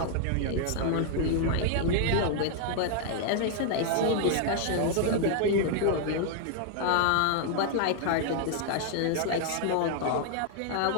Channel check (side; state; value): both; different; correlation 0.00